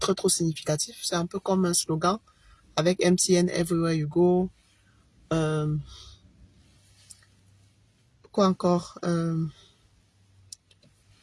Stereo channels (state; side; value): identical; both; correlation 1.00